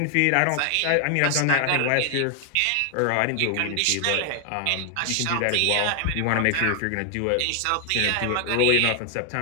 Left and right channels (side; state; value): both; different; correlation 0.00